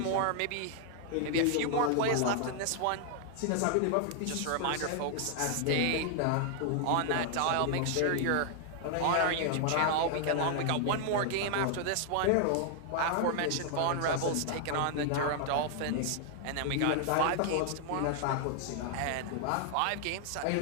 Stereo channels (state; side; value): different; both; correlation 0.00